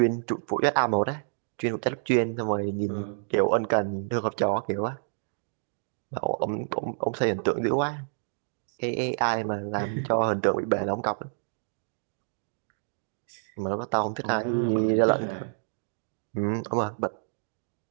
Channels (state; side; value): silent; left; digital silence